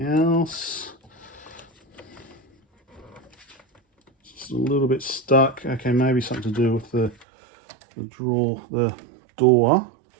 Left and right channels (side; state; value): left; drops out; at 7.2 s